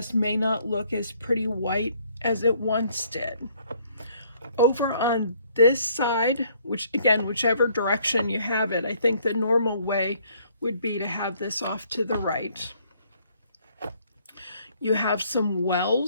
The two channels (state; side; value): inverted; both; correlation -0.63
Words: may not look as pretty white as it once did. Over on this side, which again, whichever direction you have it, I think the normal way would be to have this off to the right. You have some